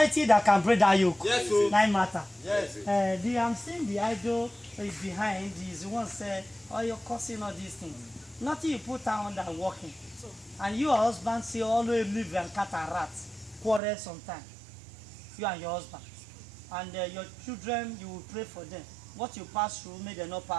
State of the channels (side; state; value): left; drops out; at 13.8 s